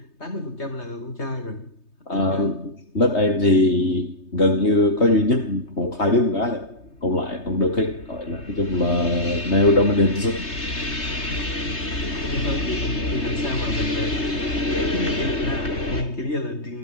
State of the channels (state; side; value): late; right; 3.2 ms